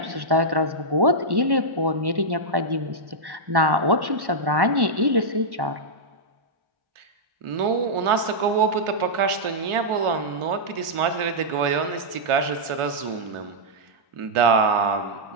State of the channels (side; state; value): left; late; 1.1 ms